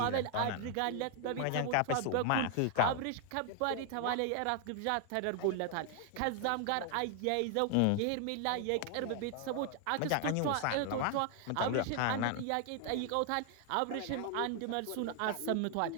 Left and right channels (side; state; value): both; different; correlation 0.00